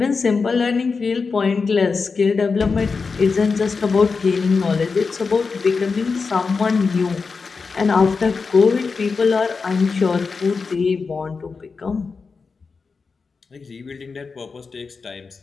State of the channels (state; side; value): quieter; right; 4.8 dB